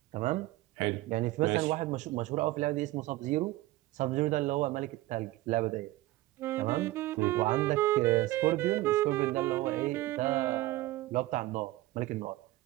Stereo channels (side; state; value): left; quieter; 17.7 dB